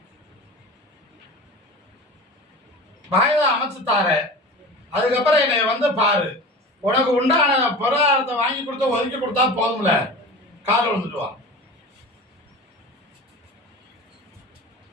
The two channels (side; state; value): both; normal; correlation 0.34